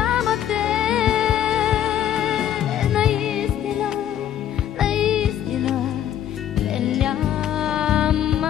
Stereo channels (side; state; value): right; quieter; 10.7 dB